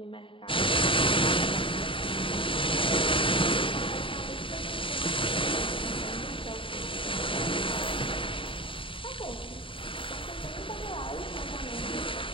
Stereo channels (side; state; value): right; late; 0.25 ms